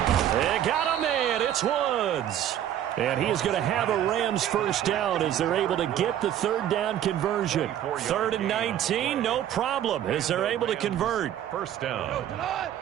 They got a man. It's Woods. And he is going to have a Rams first down as they're able to get the third down conversion. 3rd and 19, no problem, as they're able to convert. First down.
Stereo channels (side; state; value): left; quieter; 11.0 dB